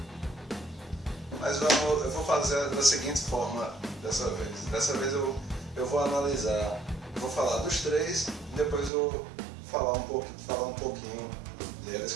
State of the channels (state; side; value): drops out; left; at 8.9 s